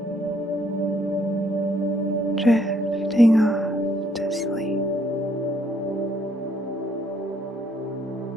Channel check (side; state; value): both; normal; correlation 0.68